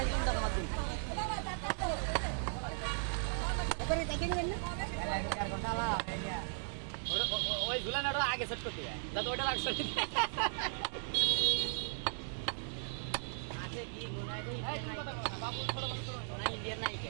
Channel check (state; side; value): silent; left; 53 dB below the other